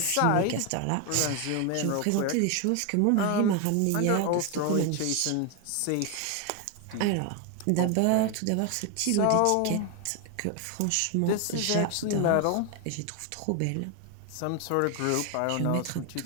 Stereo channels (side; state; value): both; different; correlation 0.01